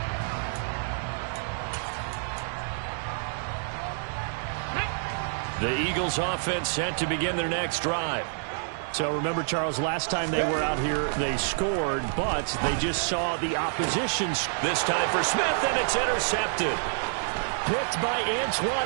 The Eagles offense set to begin their next drive. So remember, Charles, last time they were out here, they scored, but they just saw the opposition. This time for Smith, and it's intercepted. Picked by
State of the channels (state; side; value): silent; left; 59 dB below the other